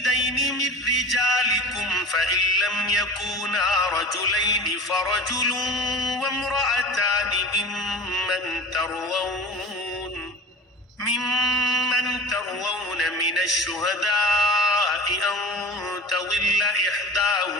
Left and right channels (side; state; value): both; normal; correlation 0.36